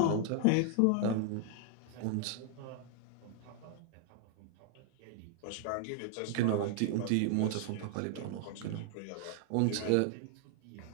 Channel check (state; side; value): different; both; correlation 0.00